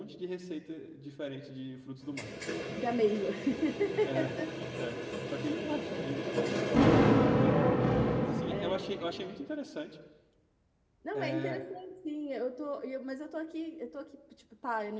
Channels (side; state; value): both; identical; correlation 1.00